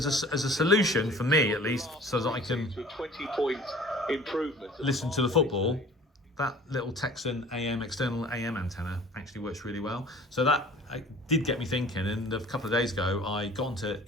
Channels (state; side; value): normal; both; correlation 0.48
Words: a solution for me, at least, so that I can listen to the football, that little Tecsun external AM antenna actually works really well. So that did get me thinking, and a couple of days ago I got onto